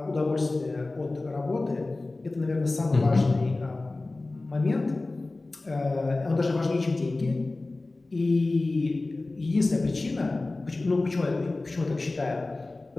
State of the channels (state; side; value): quieter; right; 3.1 dB